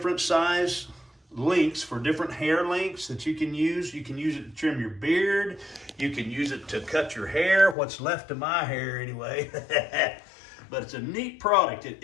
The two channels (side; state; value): right; drops out; at 7.8 s